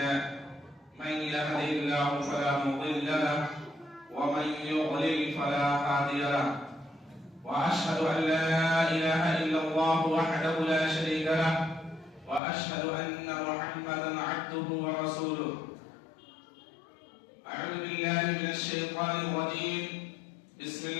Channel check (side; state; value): right; drops out; at 12.4 s